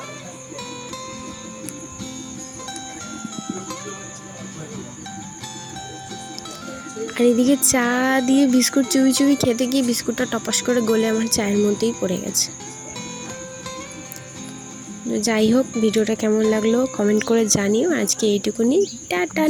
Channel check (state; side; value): identical; both; correlation 1.00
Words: আর এদিকে চা দিয়ে বিস্কুট চুবি চুবি খেতে গিয়ে বিস্কুটটা টপাস করে গলে আমার চায়ের মধ্যেই পড়ে গেছে। যাই হোক, ভিডিওটা কেমন লাগলো কমেন্ট করে জানিও। আজকে এইটুকুনি, টাটা,